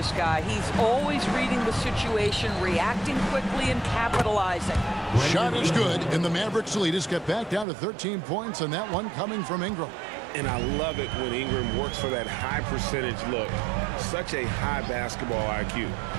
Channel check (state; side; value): drops out; left; at 7.7 s